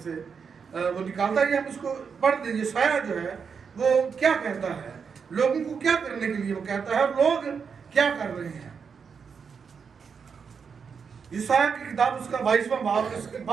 वो निकालता है। हम इसको पढ़ दें। यशायाह जो है वो क्या कहता है, लोगों को क्या करने के लिए वो कहता है और लोग क्या कर रहे हैं। यशायाह की किताब उसका 22वां बाब उसके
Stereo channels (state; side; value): quieter; left; 6.1 dB